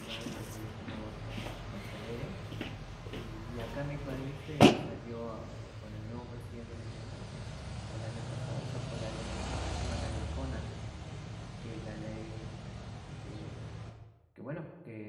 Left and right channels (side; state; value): both; identical; correlation 1.00